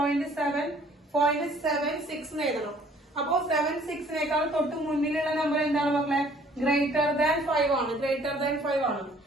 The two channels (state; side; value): normal; both; correlation 0.57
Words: എന്ന് എഴുതണം. അപ്പോ 76നേക്കാൾ തൊട്ട് മുന്നിലുള്ള നമ്പർ എന്താണ് മക്കളെ? ഗ്രേറ്റർ ദാൻ 5 ആണ്. ഗ്രേറ്റർ ദാൻ 5 ആണ്.